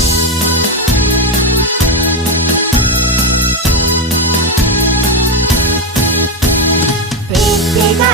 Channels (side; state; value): both; normal; correlation 0.11